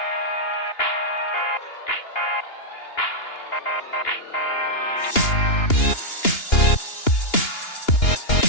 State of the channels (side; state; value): right; late; 2.9 ms